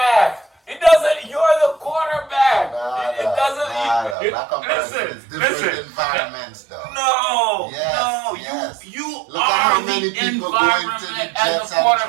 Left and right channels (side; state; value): left; drops out; at 4.2 s